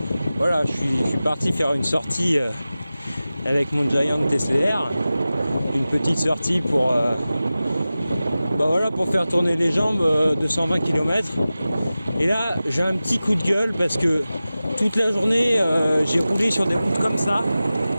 voilà, je suis parti faire une sortie avec mon Giant TCR, une petite sortie pour pour faire tourner les jambes de 120 km. Et là j'ai un petit coup de gueule parce que toute la journée j'ai roulé sur des routes comme ça,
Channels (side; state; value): both; inverted; correlation -0.96